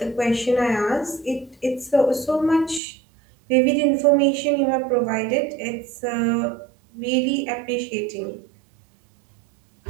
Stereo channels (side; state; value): left; drops out; at 2.8 s